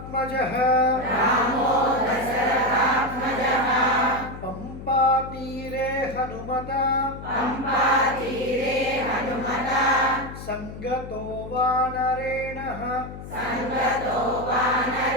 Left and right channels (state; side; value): noise; left; hum, 12 dB below the sound